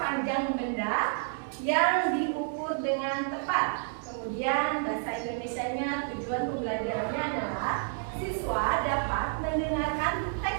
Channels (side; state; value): left; silent; digital silence